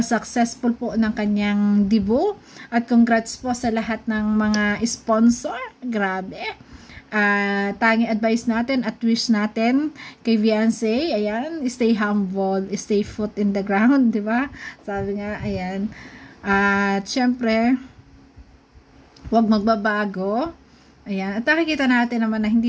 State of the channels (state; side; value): identical; both; correlation 1.00